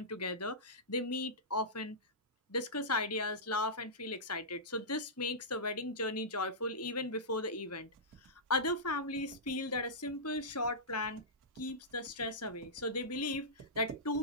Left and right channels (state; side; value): normal; both; correlation -0.16